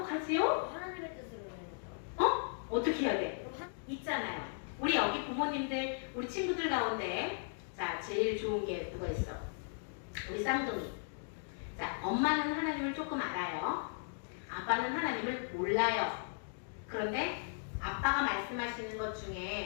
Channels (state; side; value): silent; right; digital silence